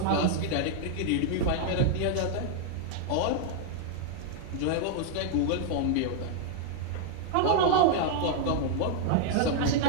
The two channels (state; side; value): different; both; correlation 0.00